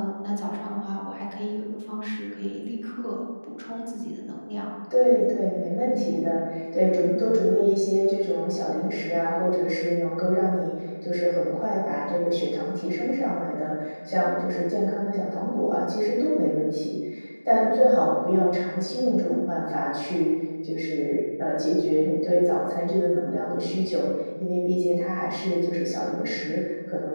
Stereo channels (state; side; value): inverted; both; correlation -1.00